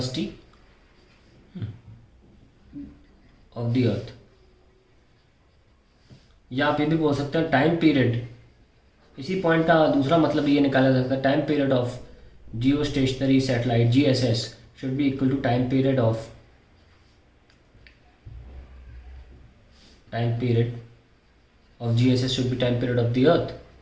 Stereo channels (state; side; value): identical; both; correlation 1.00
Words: of the earth, या आप ये भी बोल सकते हैं टाइम पीरियड. इसी पॉइंट का दूसरा मतलब ये निकाला जा सकता है, time period of geostationary satellite GSS should be equal to time period of GSS should be time period of the earth,